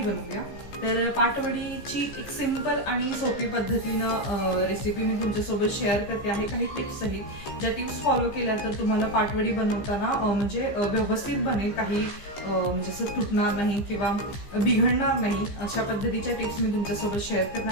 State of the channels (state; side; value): late; right; 15 ms